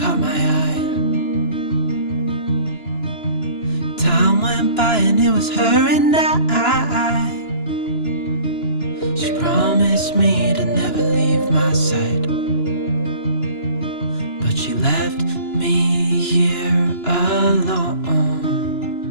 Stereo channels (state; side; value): late; right; 2.9 ms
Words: caught my eye. Time went by and it was her and I. She promised me to never leave my side, but she left me here alone.